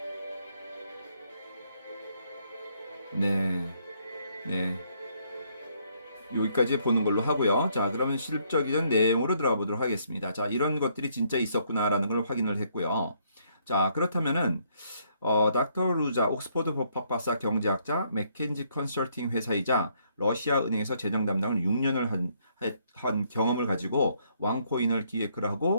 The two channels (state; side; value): inverted; both; correlation -0.70